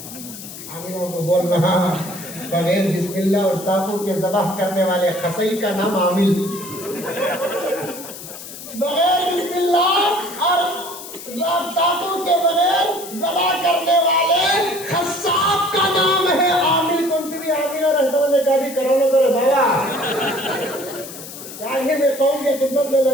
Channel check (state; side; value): noise; left; hiss, 13 dB below the sound